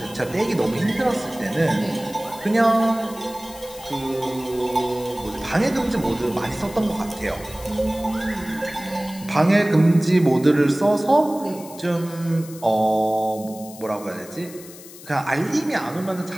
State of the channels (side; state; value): left; noise; hiss, 18 dB below the sound